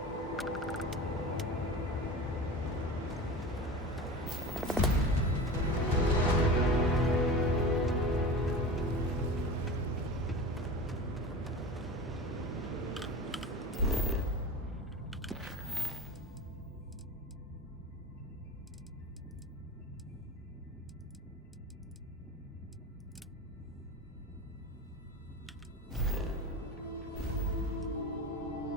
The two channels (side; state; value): both; normal; correlation 0.30